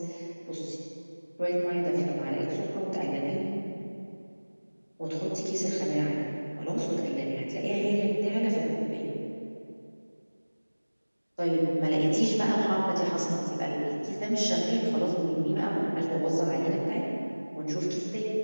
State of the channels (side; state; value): both; inverted; correlation -1.00